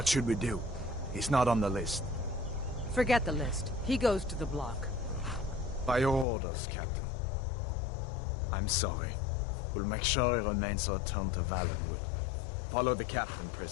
should we do? He's not on the list. Forget the list. He goes to the block. By your orders, Captain. I'm sorry. We'll make sure he remains returned to Valenwood. Follow the captain,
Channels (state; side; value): drops out; right; at 6.2 s